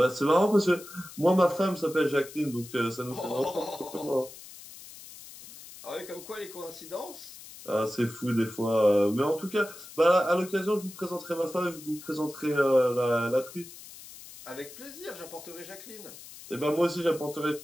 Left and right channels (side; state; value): left; noise; hiss, 16 dB below the sound